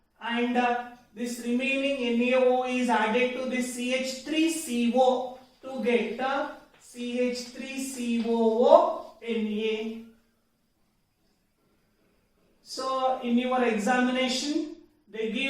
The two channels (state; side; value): identical; both; correlation 1.00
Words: and this remaining NaO is added to this CH3CO to get CH3COONA. So in your examination, they